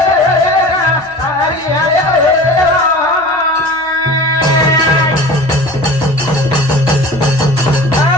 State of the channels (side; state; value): both; normal; correlation 0.39